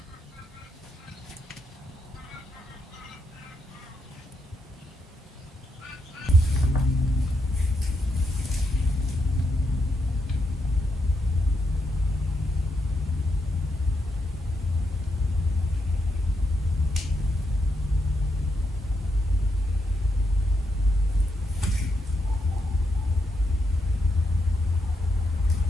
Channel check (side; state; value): both; normal; correlation 0.80